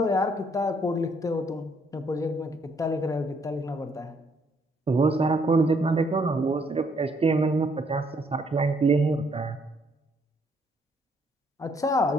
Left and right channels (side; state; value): both; normal; correlation 0.69